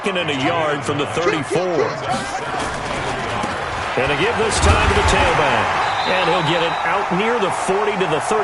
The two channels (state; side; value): identical; both; correlation 1.00